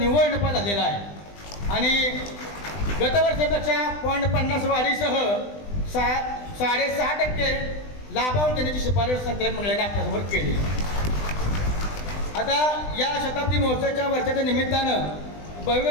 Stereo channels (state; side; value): late; right; 20 ms